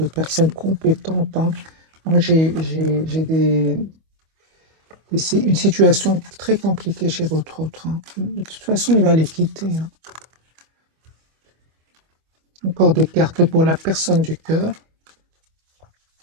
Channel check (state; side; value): late; left; 25 ms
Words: personnes compétentes, hein. Moi, j'ai une situation très compliquée chez votre autre, hein. De toute façon, il va les quitter, hein. Encore des cartes pour la personne du cœur.